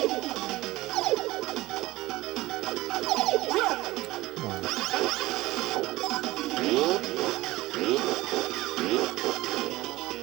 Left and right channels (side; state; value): left; quieter; 18.8 dB